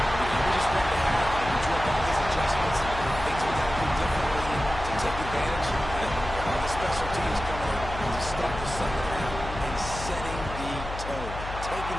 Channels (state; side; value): noise; left; hum, 9 dB below the sound